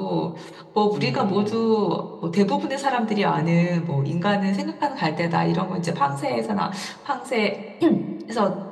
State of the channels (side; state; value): both; identical; correlation 1.00